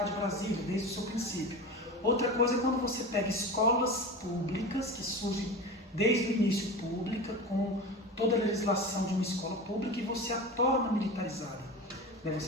de Brasília, desde o seu princípio. Outra coisa é quando você pega escolas públicas, que surgem desde o início pública, com toda a legislação de uma escola pública, e você a torna militarizada.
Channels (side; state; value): both; normal; correlation 0.29